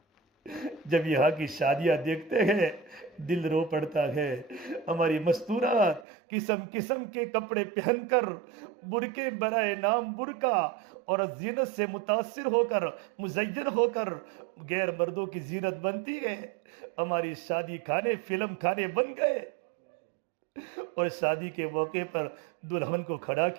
جب یہاں کی شادیاں دیکھتے ہیں دل رو پڑتا ہے۔ ہماری مستورات قسم قسم کے کپڑے پہن کر، برقعے برائے نام برقع اور زینت سے متاثر ہو کر، مزین ہو کر غیر مردوں کی زینت بنتی ہے۔ ہماری شادی کھانے فلم کھانے بن گئے، اور شادی کے موقع پر دلہن کو کھڑا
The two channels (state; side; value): drops out; left; at 6.1 s